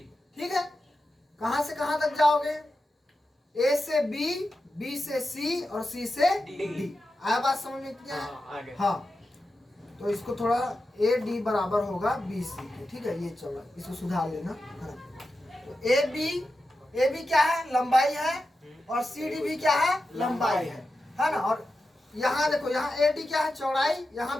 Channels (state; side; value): normal; both; correlation 0.91